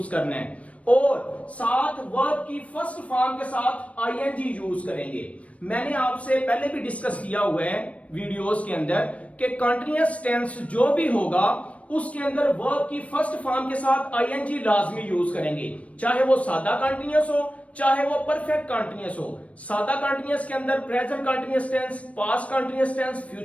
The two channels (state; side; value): late; right; 0.065 ms